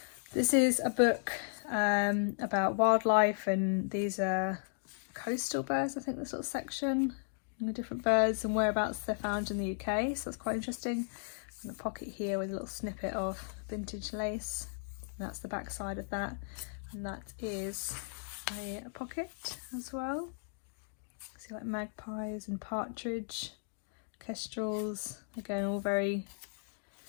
This is a book about wildlife, and these are coastal birds, I think, the sort of section, and the different birds and whereabouts they're found in the UK, so that's quite interesting. And a pocket here with a little snippet of vintage lace, and that's the back side of that, and that is a pocket as well. See, like magpies and partridge, kestrels, again all very,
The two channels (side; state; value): right; silent; digital silence